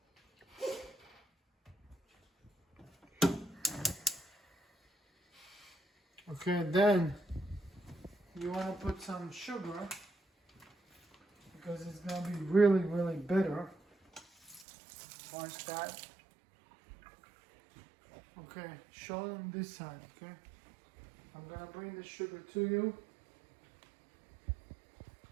Okay, then you want to put some sugar because it's going to be really bitter. Watch that. Okay, show them this side, okay? I'm gonna bring the sugar to you.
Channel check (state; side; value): drops out; left; at 14.7 s